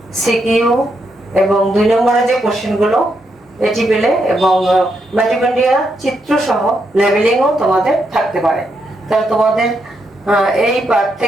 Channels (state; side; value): normal; both; correlation 0.80